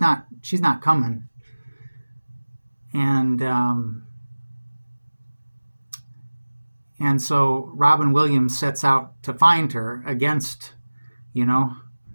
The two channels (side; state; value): both; inverted; correlation -1.00